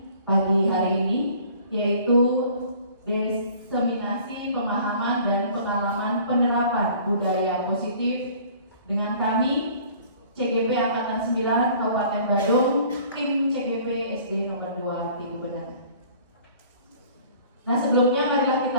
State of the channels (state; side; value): inverted; both; correlation -0.51